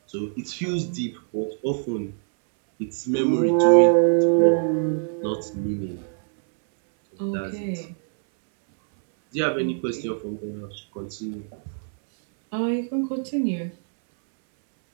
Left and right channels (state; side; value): silent; left; 63 dB below the other